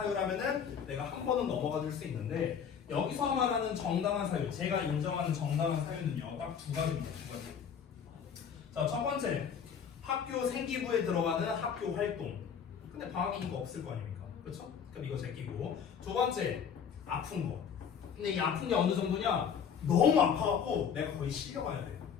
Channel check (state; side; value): quieter; right; 7.4 dB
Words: 내가 한 번은 넘어가 줄 수 있는데 여기서 말하는 정당한 사유, 제가 인정하는 정당한 사유는요 딱 두 가지입니다. 두 가지. 자, 첫 번째 학교 생기부에 들어가는 학교 활동. 근데 방학이니까 없을 거 아닙니까? 그렇죠? 그럼 이거 제끼고. 두 번째 아픈 거. 근데 이 아픈 게 어느 정도냐? 너무 아파갖고 내가 거의 실려가야 돼.